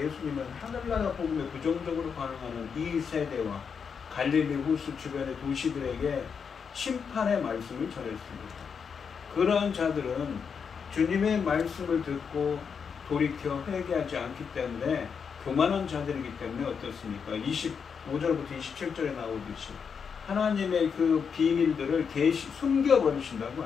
하늘나라 복음에 부정적으로 반응하는 이 세대와 갈릴리 호수 주변의 도시들에게 심판의 말씀을 전했습니다. 그러한 자들은 주님의 말씀을 듣고 돌이켜 회개하지 않기 때문에 교만한 자들이기 때문에 어떻습니까? 25절부터 27절에 나오듯이 하나님의 그 비밀들을 숨겨버리신다고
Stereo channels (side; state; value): right; quieter; 6.4 dB